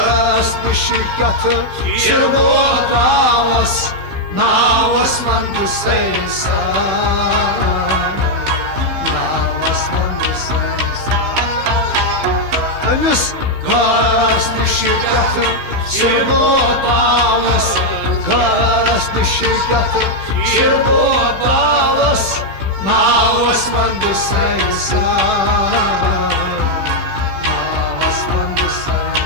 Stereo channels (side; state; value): left; late; 16 ms